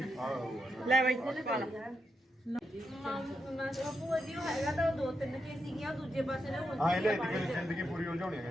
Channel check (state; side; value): normal; both; correlation 0.83